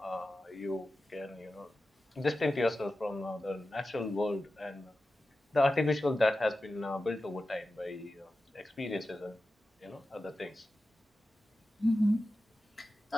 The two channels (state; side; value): normal; both; correlation 0.93